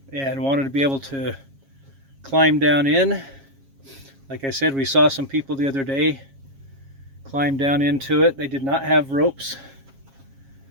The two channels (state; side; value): late; left; 7.4 ms